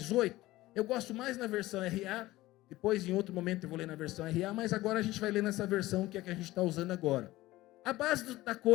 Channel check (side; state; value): right; quieter; 17.5 dB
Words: Eu gosto mais na versão RA. Depois, em outro momento, eu vou ler na versão RA, mas agora a gente vai ler nessa versão que é a que a gente está usando agora. A base da